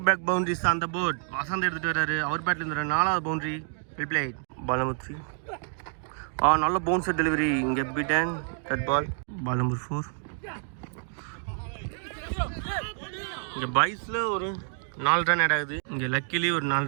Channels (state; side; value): silent; left; 59 dB below the other